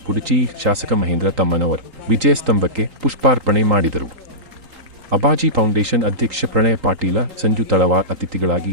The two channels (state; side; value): late; left; 3.8 ms